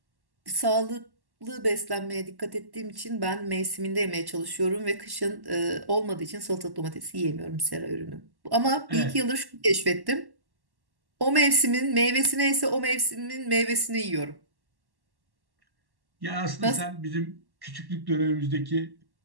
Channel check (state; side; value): late; left; 1.1 ms